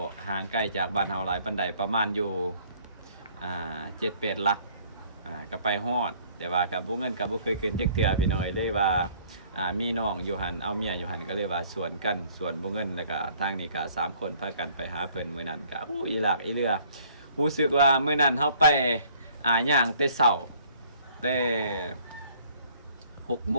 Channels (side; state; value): both; inverted; correlation -0.58